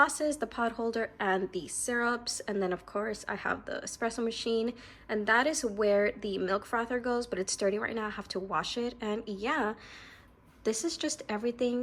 the pod holder, and the syrups. And then of course I have the espresso machine, and that is where the milk frother goes, but it's dirty right now. I have to wash it. And yeah, this is just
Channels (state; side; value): identical; both; correlation 1.00